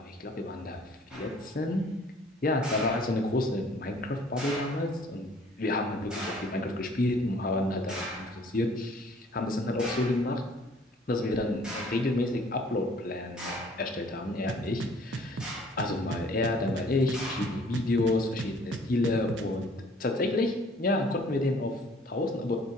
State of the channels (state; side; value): normal; both; correlation 0.56